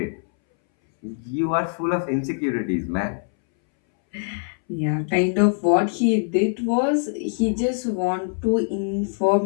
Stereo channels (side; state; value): right; silent; 62 dB below the other